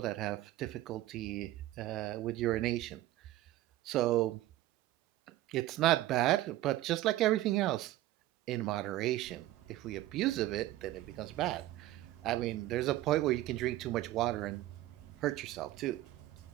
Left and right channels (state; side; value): quieter; left; 15.6 dB